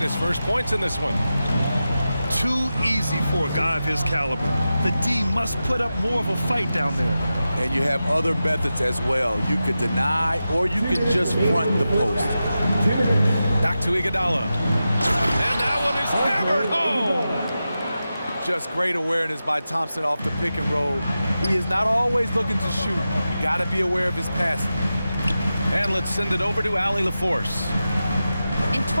first points in this one. Too easy for a guy of his caliber. The D must put up more of a fight down there. And you have other methods as well. You could deny or you could just front the post. Back to Iguodala. And that one is hammered home. Just great awareness by Thompson off the pick and roll. He is not always looking to shoot. You got to be aware of his passing. And let's send it over to Allie LaForce. In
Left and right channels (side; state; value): both; inverted; correlation -0.92